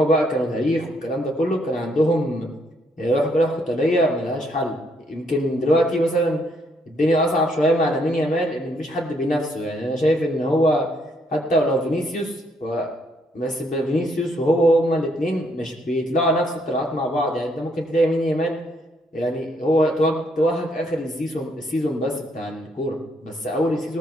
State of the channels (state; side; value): normal; both; correlation 0.71